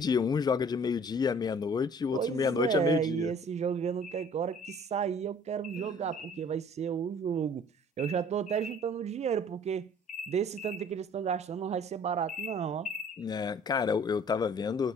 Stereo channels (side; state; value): both; normal; correlation 0.53